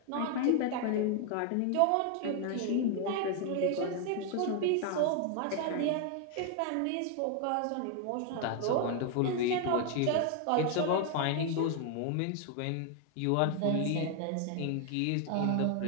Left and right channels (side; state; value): both; different; correlation 0.00